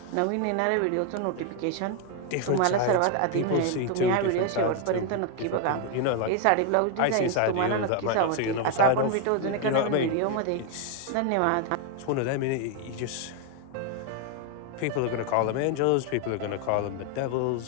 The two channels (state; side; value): different; both; correlation 0.01